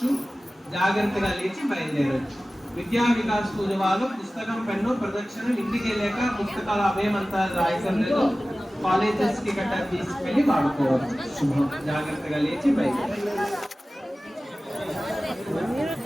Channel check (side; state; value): both; normal; correlation 0.96